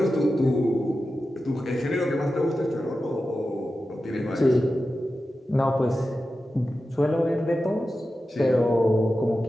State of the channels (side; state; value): both; normal; correlation 0.92